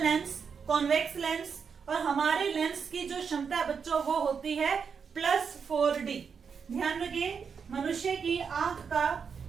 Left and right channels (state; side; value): quieter; left; 6.2 dB